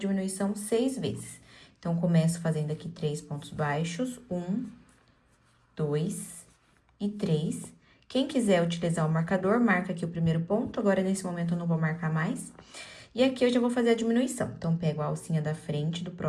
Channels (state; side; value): identical; both; correlation 1.00